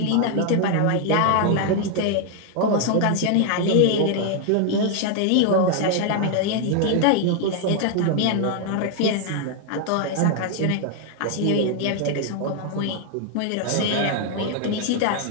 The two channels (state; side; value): different; both; correlation 0.00